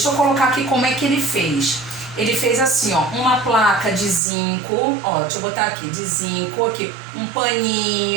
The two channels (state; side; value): drops out; left; at 4.2 s